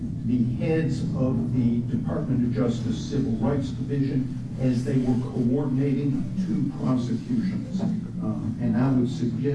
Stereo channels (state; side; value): identical; both; correlation 1.00